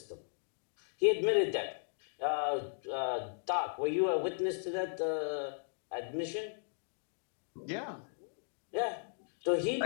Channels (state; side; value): silent; right; digital silence